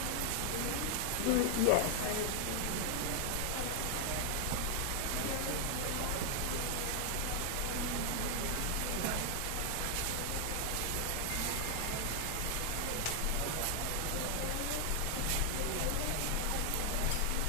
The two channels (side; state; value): both; different; correlation 0.00